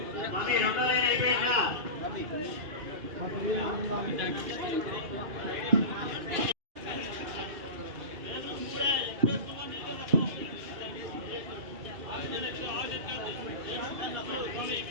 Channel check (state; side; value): late; left; 2.7 ms